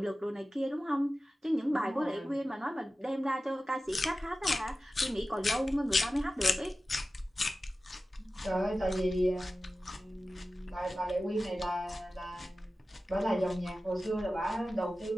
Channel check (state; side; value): normal; both; correlation 0.95